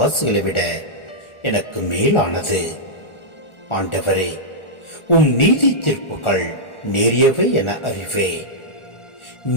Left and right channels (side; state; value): right; late; 1.4 ms